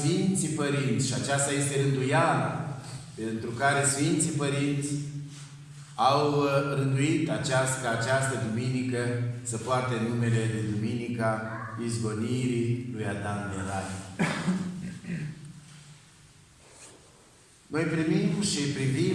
Părinți, și aceasta este rânduiala pentru care Sfinții Părinți au rânduit ca această duminică să poarte numele de Duminica Izgonirii lui Adam din Rai. Noi primim și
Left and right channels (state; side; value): identical; both; correlation 1.00